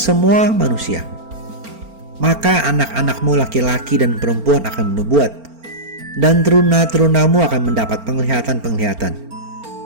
semua manusia. Maka anak-anakmu laki-laki dan perempuan akan menubuat, dan teruna-terunamu akan mendapat penglihatan-penglihatan,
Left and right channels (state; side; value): late; left; 4.4 ms